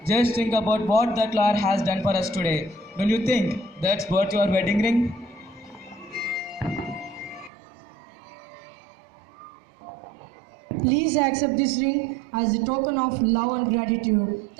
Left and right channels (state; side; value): drops out; left; at 7.5 s